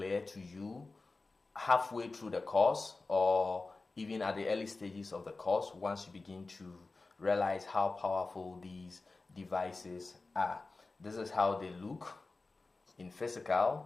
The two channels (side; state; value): right; quieter; 3.6 dB